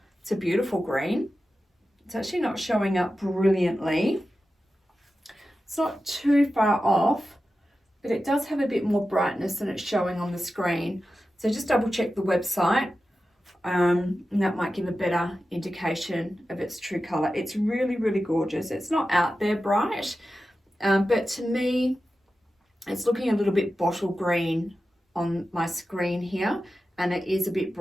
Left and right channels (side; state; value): both; normal; correlation 0.93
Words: it's a beautiful green. It's actually not showing up brilliantly. It's not too far off, but it does have a bit more brightness than it's showing on the screen. So just double check the website, and that might give a better indication of its true color. It's really, really gorgeous. It's not out there bright, but to me, it's looking a little bit bottle green on my screen here, and it is a bit